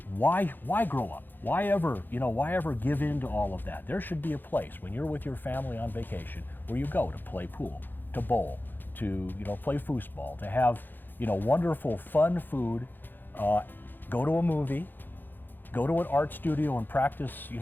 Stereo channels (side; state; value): right; late; 0.091 ms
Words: why grow up? Why ever give in to all of that? There should be a place when you're with your family on vacation where you go to play pool, to bowl, to play foosball, to have wonderful fun food, go to a movie, go to an art studio and practice